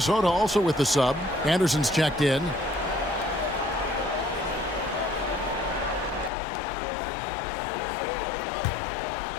also with the sub. Anderson's checked in.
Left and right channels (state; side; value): drops out; right; at 6.3 s